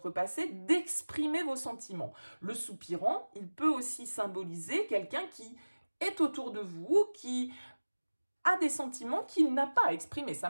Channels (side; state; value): both; inverted; correlation -1.00